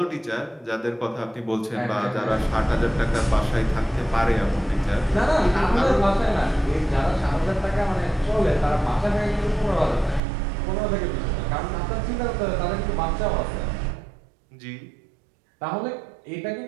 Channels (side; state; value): left; drops out; at 10.2 s